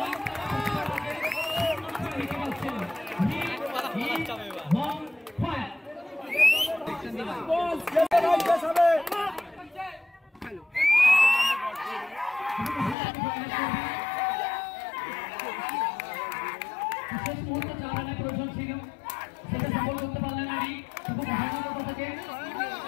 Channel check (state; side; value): drops out; right; at 13.0 s